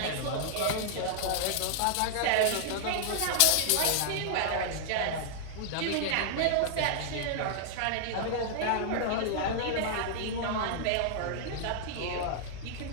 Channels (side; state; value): both; different; correlation -0.01